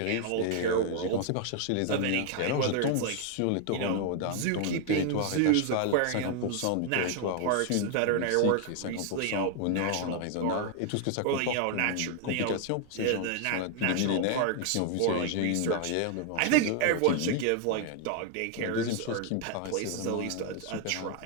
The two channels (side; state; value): both; different; correlation 0.00